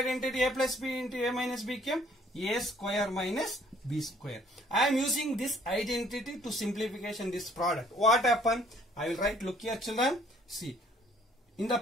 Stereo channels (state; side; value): normal; both; correlation 0.60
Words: a plus b into a minus b came a square minus b square. I am using this identity to simplification this product. What happened? I will write, look here, children, see. In the